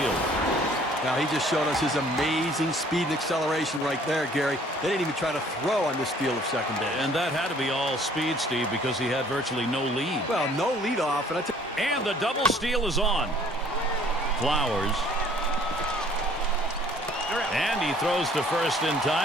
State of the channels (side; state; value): both; normal; correlation 0.57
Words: Now, he just showed us his amazing speed and acceleration right there, Gary. They didn't even try to throw on this steal of second base. And that had to be all speed, Steve, because he had virtually no lead. Well, no lead off, and the double steal is on. Flowers. And he throws to first in